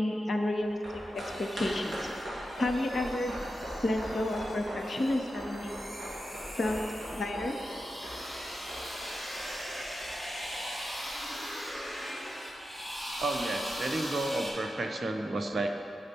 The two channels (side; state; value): both; normal; correlation 0.90